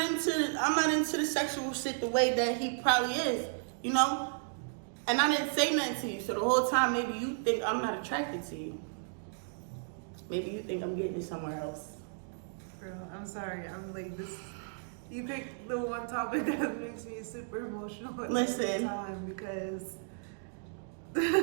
the sexual shit the way that he probably is, you know? And I didn't say nothing to you. So the whole time, maybe you think I'm not attracted to you. Maybe you think I'm getting it somewhere else. Girl, I'm sorry. I'm like this. You picked the one topic that makes me super emotional at the time because.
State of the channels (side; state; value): left; silent; digital silence